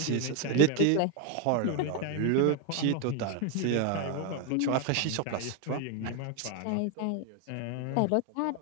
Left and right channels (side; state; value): both; different; correlation 0.01